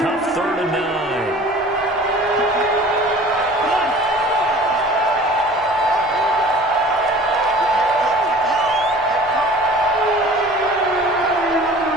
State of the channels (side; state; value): both; normal; correlation 0.45